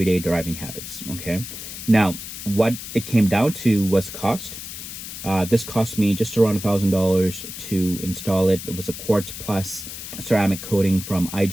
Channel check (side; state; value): left; noise; hiss, 10 dB below the sound